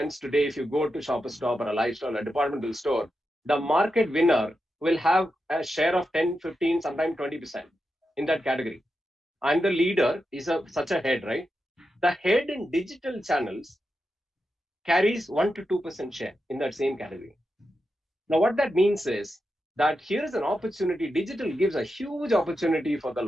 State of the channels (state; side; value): normal; both; correlation 0.88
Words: today, if you go to Shoppers Stop or a lifestyle, a departmental store, the market winner will have a share of 10, 15, sometimes 20% in that category. And the leader is such a head, right? The head in digital channels carries 1 to 2% share in that same category. Now, what that means is that here is an opportunity. Digital gives a huge opportunity for the